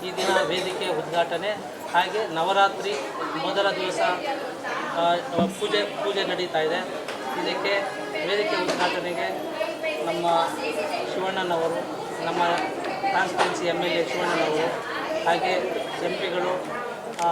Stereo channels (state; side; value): identical; both; correlation 1.00